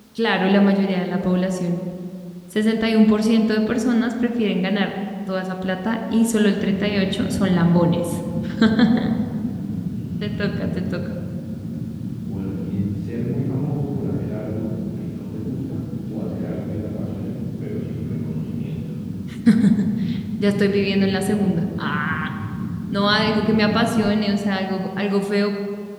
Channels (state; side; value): identical; both; correlation 1.00